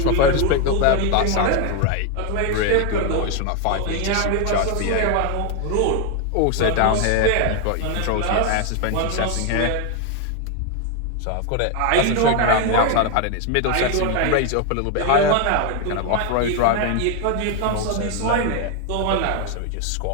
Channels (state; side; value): different; both; correlation 0.01